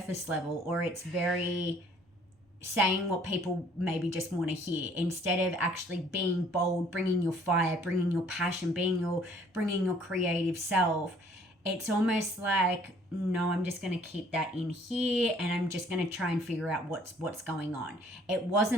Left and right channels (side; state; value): both; normal; correlation 0.58